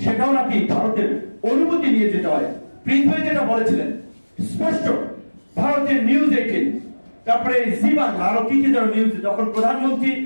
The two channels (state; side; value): inverted; both; correlation -1.00